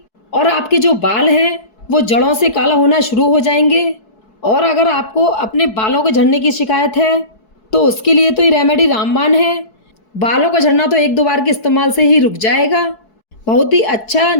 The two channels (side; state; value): right; late; 4.6 ms